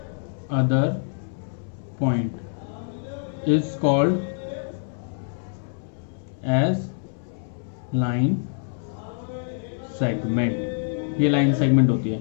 other point is called as line segment. ये लाइन सेगमेंट होती है।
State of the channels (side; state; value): right; silent; digital silence